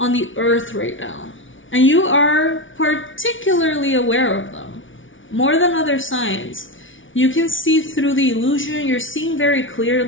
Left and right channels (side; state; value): right; late; 0.56 ms